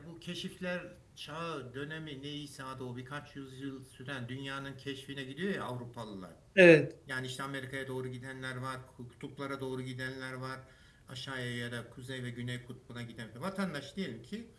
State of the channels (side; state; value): both; identical; correlation 1.00